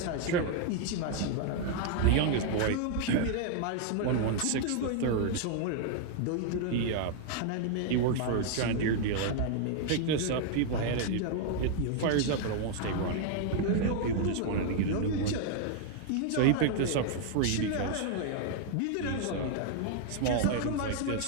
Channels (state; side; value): different; both; correlation 0.00